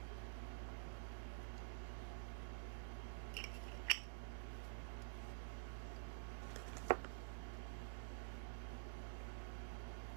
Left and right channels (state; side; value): silent; left; digital silence